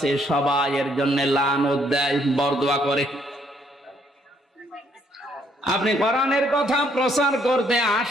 সবাই এর জন্য লানত দেয়, বরদোয়া করে। আপনি কোরআনের কথা প্রচার করতে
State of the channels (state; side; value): normal; both; correlation 0.69